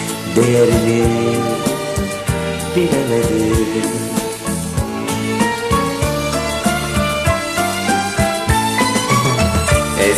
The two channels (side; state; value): both; identical; correlation 1.00